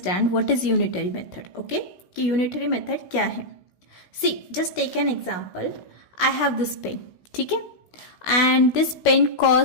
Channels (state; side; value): late; right; 16 ms